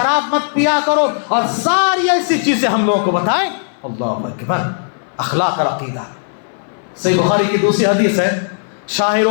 مت پیا کرو، اور ساری ایسی چیزیں ہم لوگوں کو بتائیں۔ اللہ اکبر، اخلاق اور عقیدہ۔ صحیح بخاری کی دوسری حدیث ہے، شاعر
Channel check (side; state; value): right; silent; 61 dB below the other